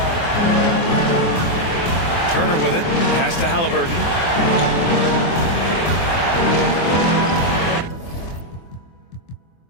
Turner with it. Pass to Halliburton.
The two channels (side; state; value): right; late; 23 ms